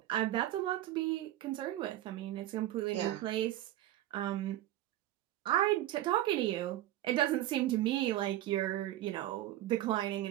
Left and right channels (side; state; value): left; quieter; 14.0 dB